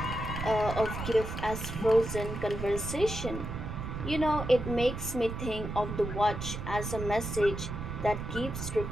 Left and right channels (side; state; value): right; noise; rumble, 6 dB below the sound